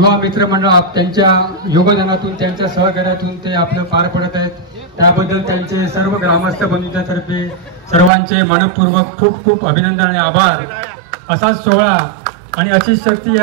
मित्र मंडळ त्यांच्या योगदानातून, त्यांच्या सहकार्यातून ते आपलं पार पडत आहेत. त्याबद्दल त्यांचे सर्व ग्रामस्थ बंधूंच्यातर्फे सर्वांचे मनपूर्वक खूप खूप अभिनंदन आणि आभार. असाच सोहळा आणि अशीच शक्ती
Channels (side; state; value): left; drops out; at 8.1 s